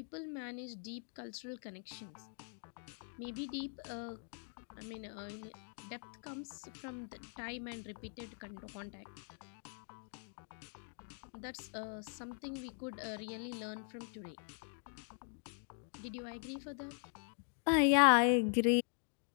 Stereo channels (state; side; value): silent; right; 50 dB below the other